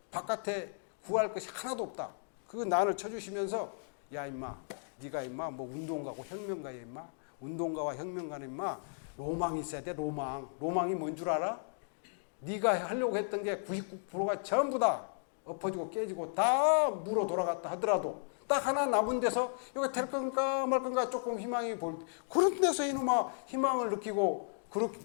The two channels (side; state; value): right; silent; digital silence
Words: 바깥에 구할 것이 하나도 없다. 그거 난을 쳐주시면서, 야 임마, 네가 임마 뭐 운동가고 혁명가야 임마. 운동가와 혁명가는 임마 로망이 있어야 돼. 로망이 뭔 줄 알아? 네가 하려고 했던 게 99%가 전부 다 엎어지고 깨지고 다 물어 돌아갔다 하더라도 딱 하나 남은 데서 이거 될 건가 말 건가 조금 희망이 보일 때, 그런 데서 이놈아 희망을 느끼고,